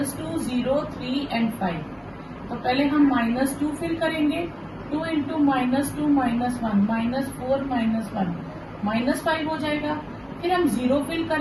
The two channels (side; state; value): both; identical; correlation 1.00